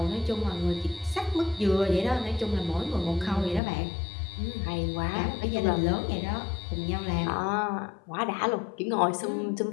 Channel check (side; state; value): right; drops out; at 3.6 s